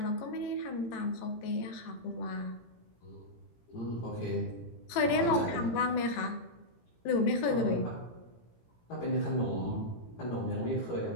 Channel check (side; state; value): right; late; 18 ms